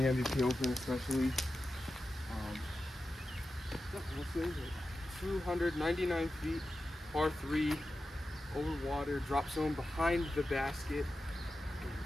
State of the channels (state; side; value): normal; both; correlation 0.92